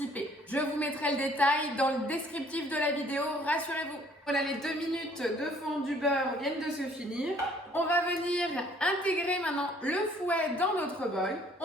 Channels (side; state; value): both; normal; correlation 0.59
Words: Je vous mettrai le détail dans le descriptif de la vidéo, rassurez-vous. Voilà, les 2 minutes de fond du beurre viennent de se finir. On va venir intégrer maintenant le fouet dans notre bol.